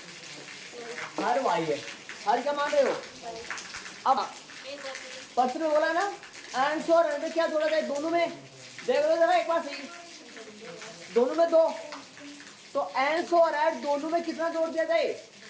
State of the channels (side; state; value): both; identical; correlation 1.00